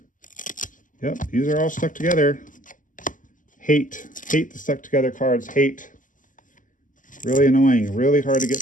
Yep, these are all stuck together. Hate the stuck together cards. Hate. Really annoying. Really hard to get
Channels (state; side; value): late; right; 0.38 ms